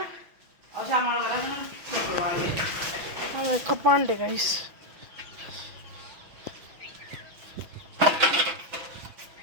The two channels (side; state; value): left; late; 6.0 ms